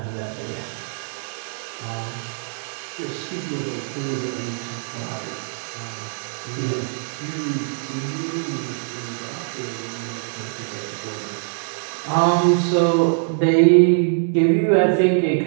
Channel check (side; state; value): left; silent; digital silence